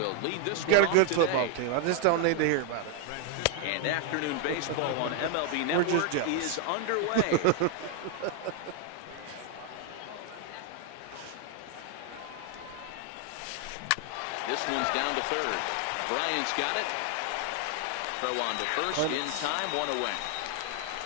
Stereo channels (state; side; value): different; both; correlation 0.00